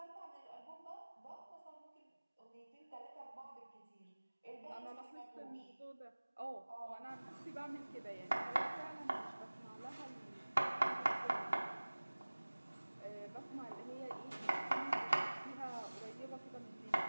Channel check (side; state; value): both; inverted; correlation -1.00